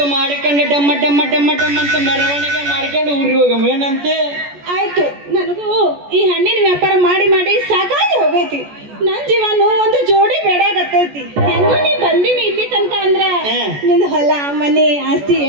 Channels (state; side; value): late; left; 14 ms